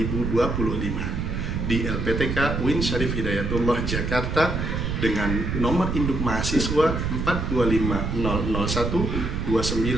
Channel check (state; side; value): noise; right; rumble, 1 dB below the sound